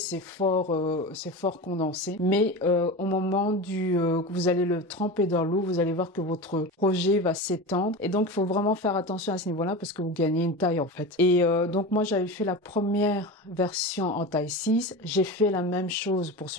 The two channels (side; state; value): both; normal; correlation 0.27